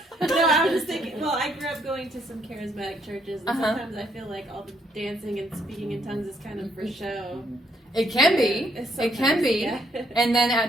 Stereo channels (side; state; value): both; normal; correlation 0.71